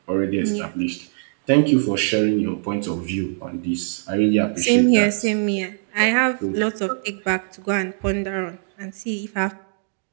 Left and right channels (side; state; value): left; silent; digital silence